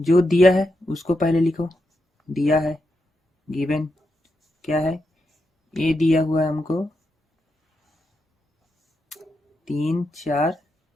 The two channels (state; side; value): normal; both; correlation 0.85